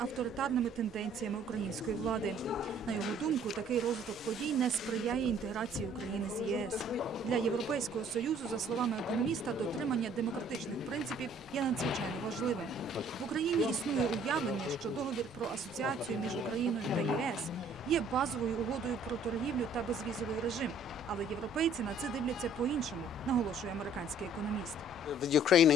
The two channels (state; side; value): normal; both; correlation 0.58